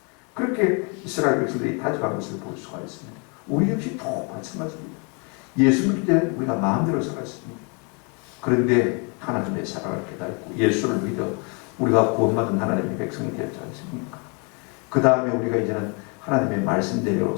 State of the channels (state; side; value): quieter; right; 34.5 dB